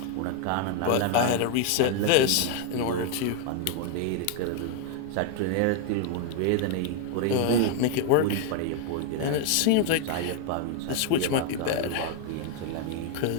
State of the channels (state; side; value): different; both; correlation 0.00